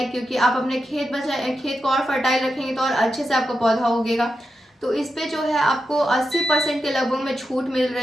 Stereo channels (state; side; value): normal; both; correlation 0.88